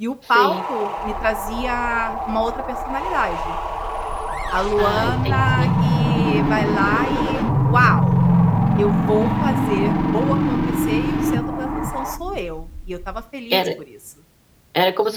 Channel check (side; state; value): both; identical; correlation 1.00